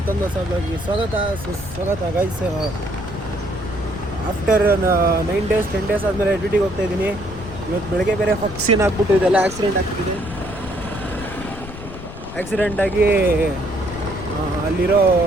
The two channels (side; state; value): left; noise; rumble, 13 dB below the sound